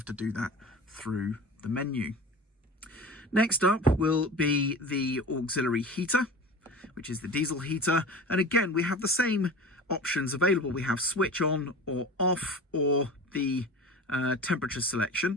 to do that through the menu. Next up will be the auxiliary heater, which is the diesel heater. And again, we have the same options available. We have switch on or off, or the temperature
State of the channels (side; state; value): both; normal; correlation 0.35